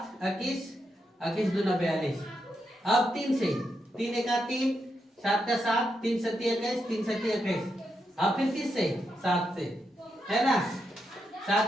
21 21 दूना 42। अब 3 से, 3 1 3 7 का 7 3 7 21 3 7 21। अब फिर किससे 7 से, है ना,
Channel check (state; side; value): normal; both; correlation 0.83